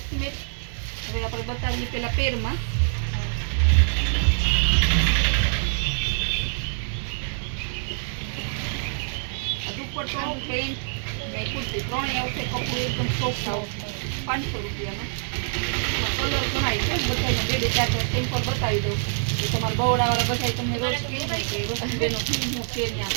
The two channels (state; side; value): silent; left; digital silence